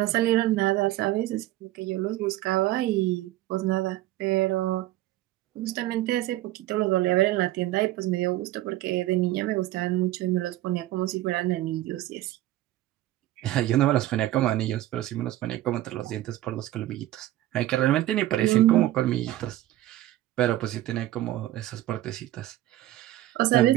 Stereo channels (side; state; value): left; quieter; 15.3 dB